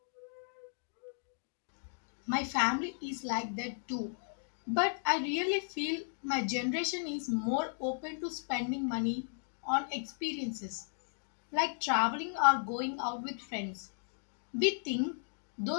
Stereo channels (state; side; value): silent; right; digital silence